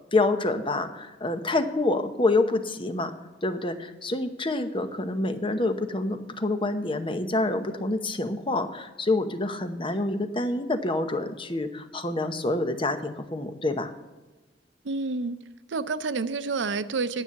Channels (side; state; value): both; normal; correlation 0.53